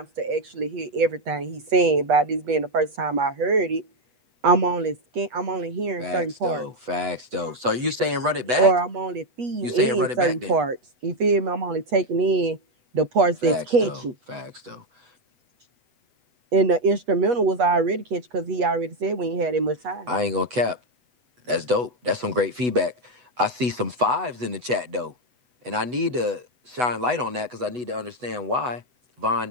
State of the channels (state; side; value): late; left; 8.1 ms